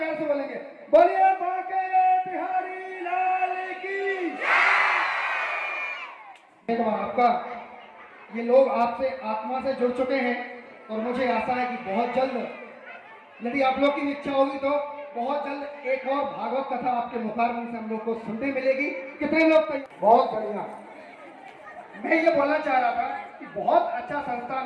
से बोलेंगे, बोलिए बांके बिहारी लाल की। आपका ये लोग आपसे आत्मा से जुड़ चुके हैं और मुझे आशा है कि बहुत जल्द, यदि आप लोग की इच्छा होगी तो बहुत जल्द एक और भागवत कथा आपके मुखारबिंद से हम लोग को सुनने मिलेगी। कितने लोग बहुत बढ़िया। मैं ये बोलना चाह रहा था कि बहुत अच्छा संस्थान,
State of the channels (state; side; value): identical; both; correlation 1.00